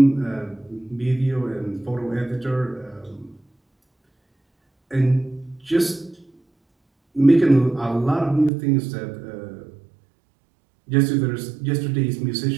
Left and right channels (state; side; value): drops out; left; at 8.5 s